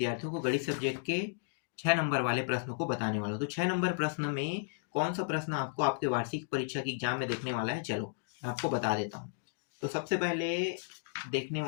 को गणित सब्जेक्ट के 6 नंबर वाले प्रश्नों को बताने वाला हूँ। तो 6 नंबर प्रश्न में कौन सा प्रश्न आपको आपके वार्षिक परीक्षा की एग्जाम में देखने वाला है, चलो मैं आपको बता देता हूँ। तो सबसे पहले देखने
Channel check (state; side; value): silent; right; digital silence